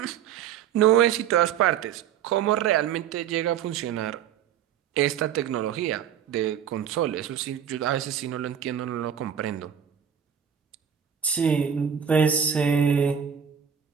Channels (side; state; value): left; quieter; 8.6 dB